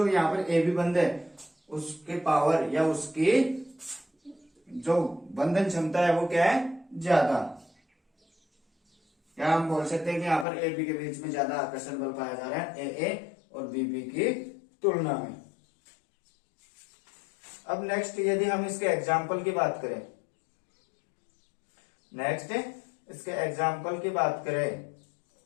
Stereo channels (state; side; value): drops out; right; at 10.5 s